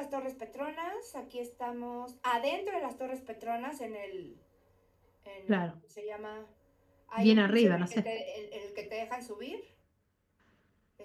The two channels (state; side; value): identical; both; correlation 1.00